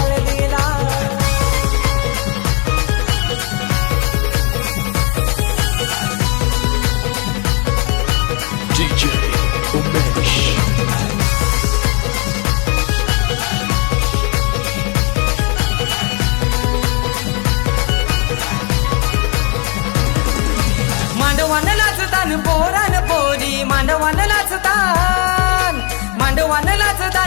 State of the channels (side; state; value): right; quieter; 33.9 dB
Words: DJ Umesh. मांडवान नाचतान पोरान पोरी, मांडवान नाचतान, मांडवान